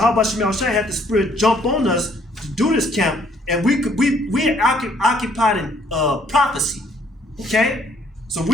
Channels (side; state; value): both; normal; correlation 0.64